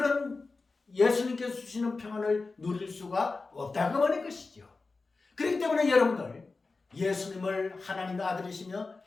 예수님께서 주시는 평안을 누릴 수가 없다고 말할 것이죠. 그렇기 때문에 여러분들 예수님을 하나님의 아들이시며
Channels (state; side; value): quieter; right; 3.9 dB